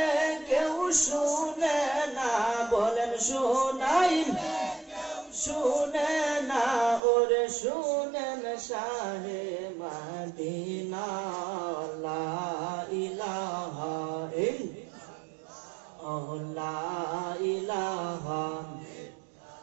কেউ শুনে না। বলেন শোনাইলে শুনে না, ওরে শুনেন শাহে মদিনা। লা ইলাহা ইল্লাল্লাহ লা ইলাহা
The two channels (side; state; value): left; drops out; at 7.0 s